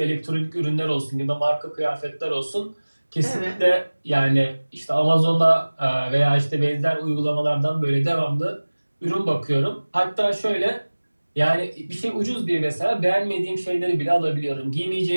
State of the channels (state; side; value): inverted; both; correlation -1.00